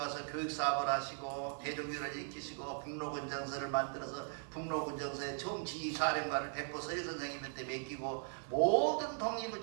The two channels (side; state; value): left; silent; 52 dB below the other